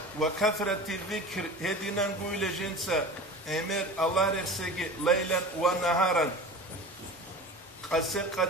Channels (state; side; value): normal; both; correlation 0.35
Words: وكثرة الذكر هدينا نقول جنسا أمر الله رسجي ليلا ونهارا قسق